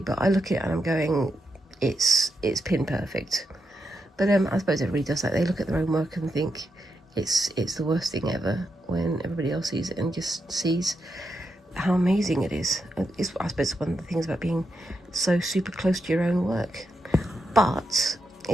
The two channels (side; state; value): both; normal; correlation 0.84